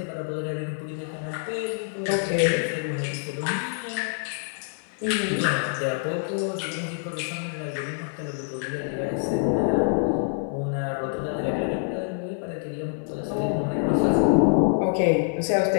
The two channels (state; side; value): silent; right; 57 dB below the other